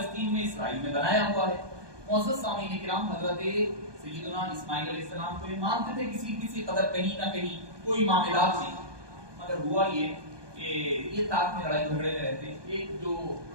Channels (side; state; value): left; late; 1.2 ms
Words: میں اسرائیل میں بنایا ہوا ہے۔ معزز سامعین کرام، حضرت سیدنا اسماعیل علیہ السلام کو یہ مانتے تھے کسی قدر کہیں نہ کہیں کوئی معاملات نہیں، مگر ہوا یہ کہ یہ تاک میں لڑائی جھگڑے میں رہتے۔ ایک جو